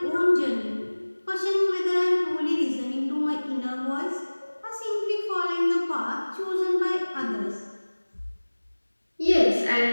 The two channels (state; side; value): inverted; both; correlation -1.00